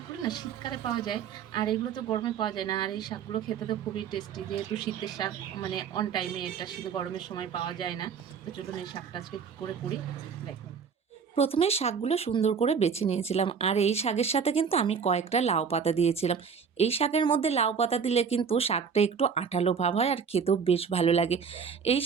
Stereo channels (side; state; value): left; quieter; 6.4 dB